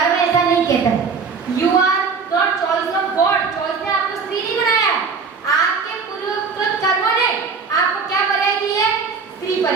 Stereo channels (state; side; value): quieter; left; 5.2 dB